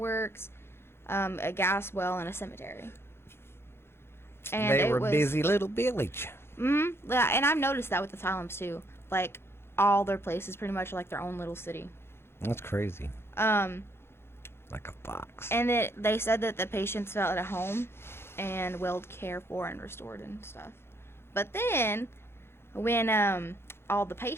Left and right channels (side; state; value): right; late; 0.12 ms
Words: a gas well, and a cemetery. And they were it was busy little village. Yeah, and I've noticed that with asylums too. Like, all their places pretty much are like their own little city. That's crazy. Like a fox. And they said that the patients felt at home and well cared for and restored and stuff. But then, when all the